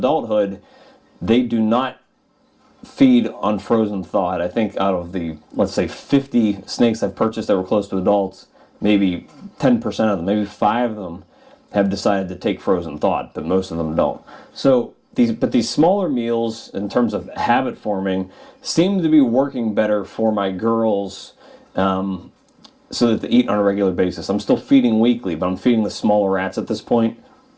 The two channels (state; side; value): identical; both; correlation 1.00